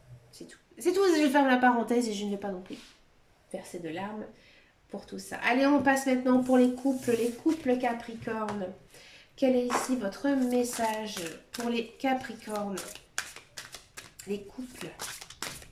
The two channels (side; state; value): both; identical; correlation 1.00